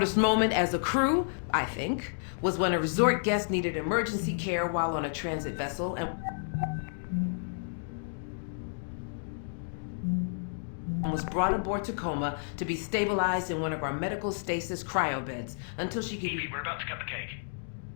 moment as a crew, I think, was when a resort guest needed emergency care while on a transit vessel and was brought aboard Tacoma to be stabilized in one of our medical stasis cryo beds until she could be... We're about to cut the cake.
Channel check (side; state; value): right; silent; digital silence